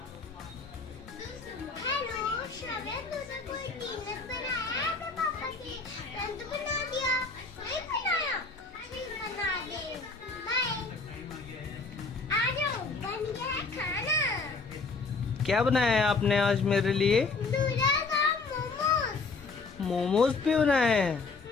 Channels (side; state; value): right; quieter; 4.1 dB